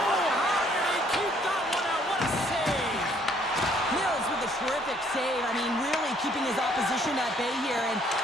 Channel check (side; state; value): both; normal; correlation 0.64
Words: how did he keep that one out? What a save! Mills with a terrific save. I mean, really keeping his opposition at bay here. And